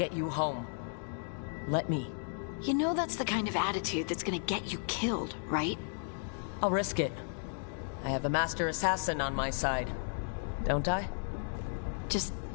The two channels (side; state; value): right; silent; 55 dB below the other